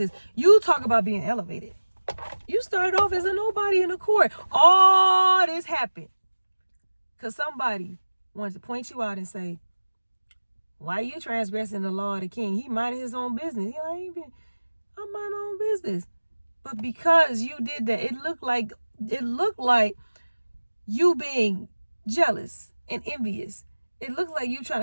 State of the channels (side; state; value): both; inverted; correlation -1.00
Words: You talk about being elevated. You started off as a nobody in the court. All this happened because somebody wanted to point you out and say, why are you transgressing the law of the king? He minded his own business. I'm minding my own business. But because you did that, it looked like you being jealous and envious. It looked like you trying